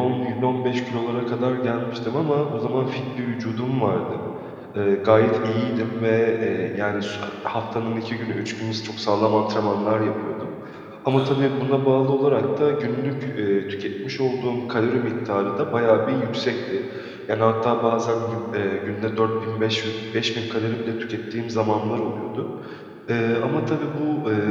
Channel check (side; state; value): both; identical; correlation 1.00